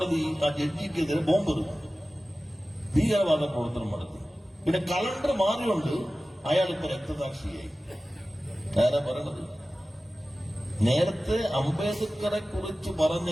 ആ ജഡ്ജിക്കെതിരെ ബോംബെറിഞ്ഞു, ഭീകരവാദ പ്രവർത്തനം നടത്തി. പിന്നെ കലണ്ടർ മാറിയുണ്ട് അയാളിപ്പോ രക്തസാക്ഷിയായി. ആരാ പറയണത്? നേരത്തെ അംബേദ്കറെ കുറിച്ച്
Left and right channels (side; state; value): both; normal; correlation 0.96